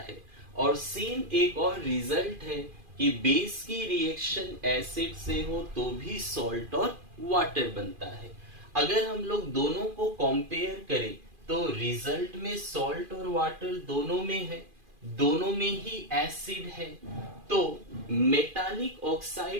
है। और सेम एक और रिजल्ट है कि बेस की रिएक्शन एसिड से हो तो भी सॉल्ट और वाटर बनता है। अगर हम लोग दोनों को कंपेयर करें तो रिजल्ट में सॉल्ट और वाटर दोनों में है, दोनों में ही एसिड है। तो मेटालिक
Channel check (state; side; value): late; left; 2.4 ms